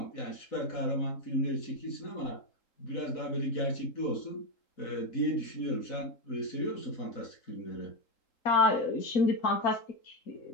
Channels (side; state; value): right; late; 3.8 ms